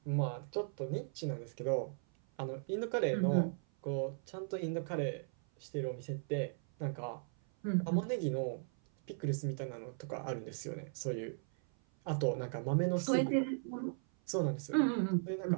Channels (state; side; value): silent; left; 53 dB below the other